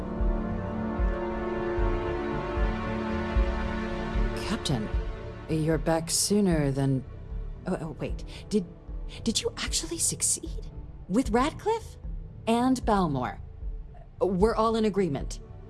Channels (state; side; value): identical; both; correlation 1.00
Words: Captain, you're back sooner than... Oh, wait. Did you actually succeed? With Radcliffe? And Balmore? We're all in agreement.